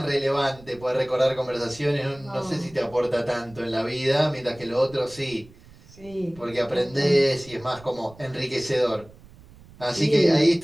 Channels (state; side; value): noise; right; rumble, 23 dB below the sound